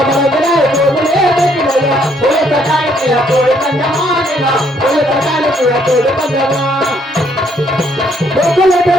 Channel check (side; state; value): both; normal; correlation 0.68